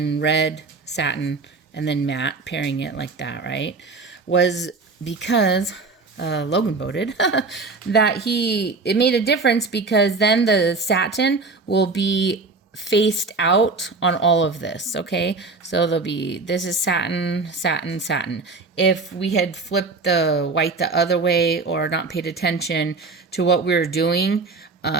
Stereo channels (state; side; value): quieter; left; 3.9 dB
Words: red satin, and then matte, pairing it like that, right? Was because Logan voted that it made a difference because then the satin will be faced out on all of this, okay? So this is satin, satin, satin. If we had flipped the white the other way or not paid attention to what we were doing,